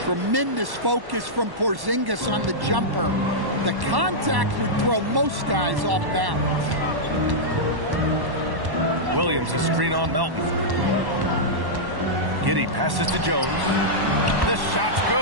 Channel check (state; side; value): late; left; 1.1 ms